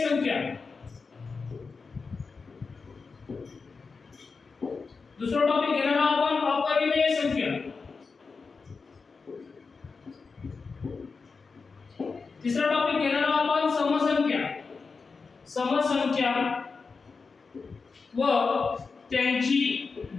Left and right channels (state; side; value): quieter; right; 4.7 dB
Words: संख्या, दुसरा टॉपिक घेणार आहोत आपण अपरिमेय संख्या, तिसरा टॉपिक घेणार आहोत आपण समसंख्या, समसंख्या व त्यांची